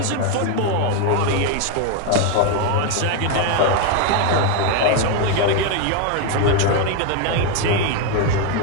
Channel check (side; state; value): both; different; correlation 0.02